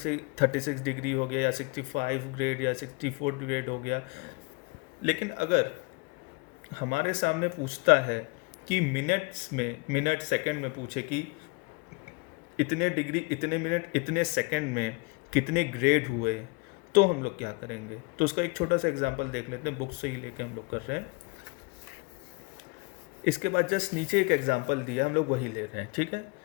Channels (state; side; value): quieter; right; 28.2 dB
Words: 36 डिग्री हो गया या 65 ग्रेड या 64 ग्रेड हो गया। लेकिन अगर हमारे सामने पूछता है कि मिनट सेकंड में पूछे कि इतने डिग्री इतने मिनट इतने सेकंड में कितने ग्रेड हुए, तो हम लोग क्या करेंगे? तो उसका एक छोटा सा एग्जांपल देख लेते हैं, बुक से ही लेके हम लोग कर रहे हैं। इसके बाद जस्ट नीचे एक एग्जांपल दिया, हम लोग वही ले रहे हैं। ठीक है,